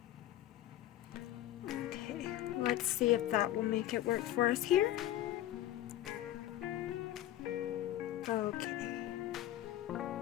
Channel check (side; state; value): right; quieter; 13.5 dB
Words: Let's see if that will make it work for us here. Okay.